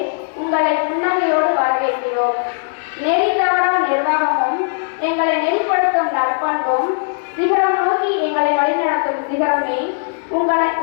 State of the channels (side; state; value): right; silent; 66 dB below the other